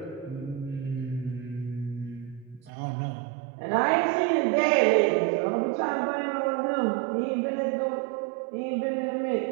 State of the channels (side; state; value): left; drops out; at 2.7 s